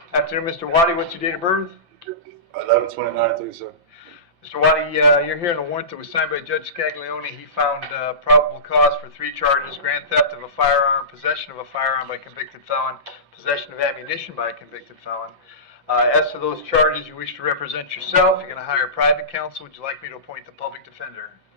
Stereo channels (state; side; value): late; left; 5.8 ms